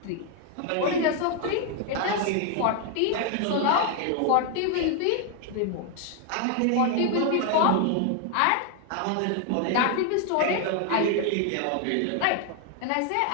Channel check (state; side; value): different; both; correlation 0.00